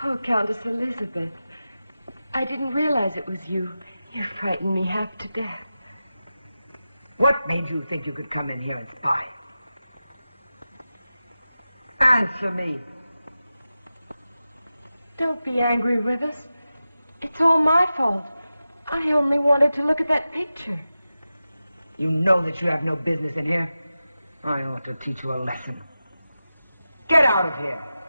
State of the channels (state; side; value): inverted; both; correlation -0.93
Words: Oh, Countess Elizabeth. I didn't realize it was you. You frightened me half to death. What made you think you could come in here and spy? Answer me. Don't be angry, Rivers. It's all my fault. I only wanted to look at that picture. You know that you have no business in here. I ought to teach you a lesson. Get out of here.